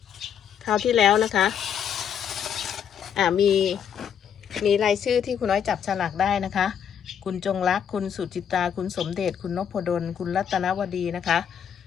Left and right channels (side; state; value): right; quieter; 8.4 dB